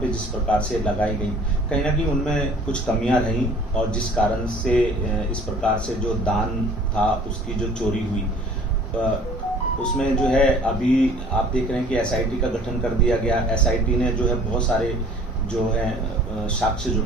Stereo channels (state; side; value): normal; both; correlation 0.51